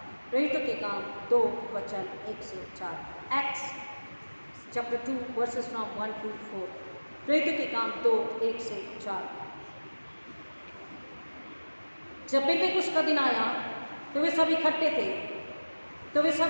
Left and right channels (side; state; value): both; inverted; correlation -1.00